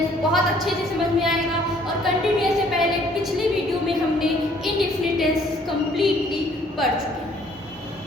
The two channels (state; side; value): normal; both; correlation 0.60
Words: बहुत अच्छे से समझ में आएगा। और कंटिन्यूअस से पहले पिछली वीडियो में हमने इनडेफिनिट टेंस कंप्लीटली पढ़ चुके हैं,